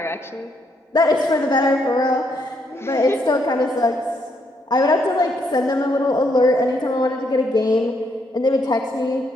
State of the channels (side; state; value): both; normal; correlation 0.75